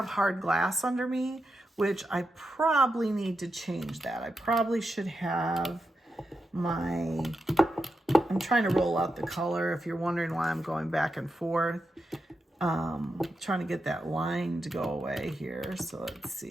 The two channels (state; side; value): normal; both; correlation 0.87